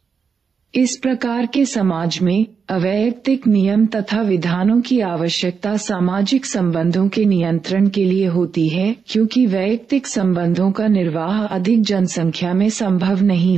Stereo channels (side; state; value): left; quieter; 5.9 dB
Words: इस प्रकार के समाज में अवैयक्तिक नियम तथा विधानों की आवश्यकता सामाजिक संबंधों के नियंत्रण के लिए होती है, क्योंकि वैयक्तिक संबंधों का निर्वाह अधिक जनसंख्या में संभव नहीं